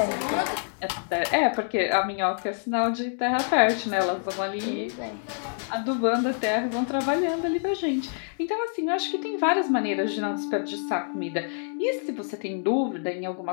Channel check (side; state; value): right; silent; 58 dB below the other